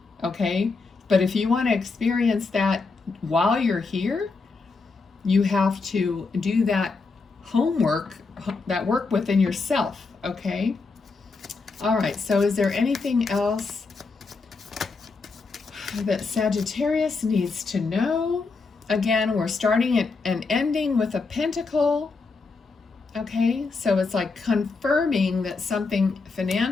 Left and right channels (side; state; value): right; quieter; 4.2 dB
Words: Okay? But if you want to experience that while you're here, you have to do that homework, that work within yourself. Okay? All right, so is there anything else that Sagittarius needs to know? Again, we're starting and ending with a pentacle. Okay, so it's like confirming that something